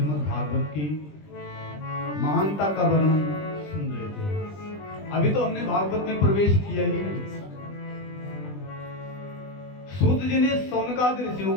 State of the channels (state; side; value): late; right; 20 ms